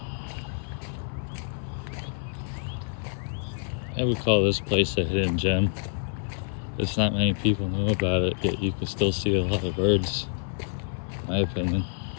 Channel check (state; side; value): silent; right; 55 dB below the other